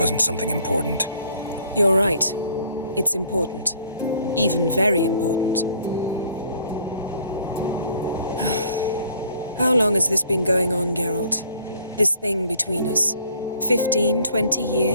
something important. You're right. It's important. Even very important. How long has this been going on, Geralt? This thing between us? 15, 20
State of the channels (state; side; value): inverted; both; correlation -0.58